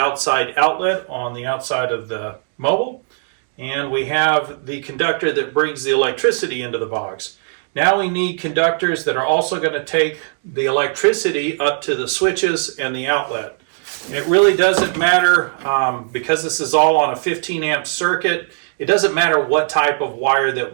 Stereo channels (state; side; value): silent; left; digital silence